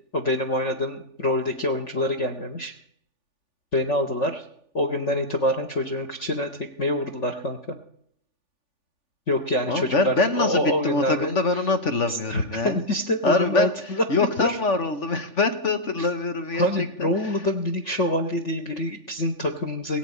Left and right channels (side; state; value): right; late; 3.4 ms